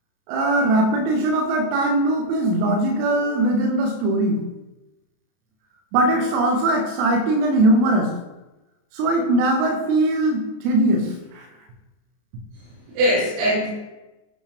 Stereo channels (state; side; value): late; left; 33 ms